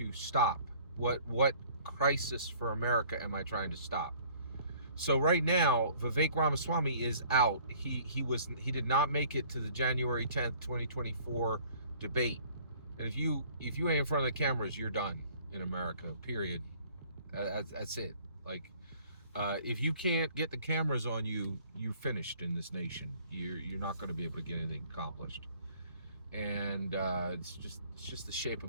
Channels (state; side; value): inverted; both; correlation -0.55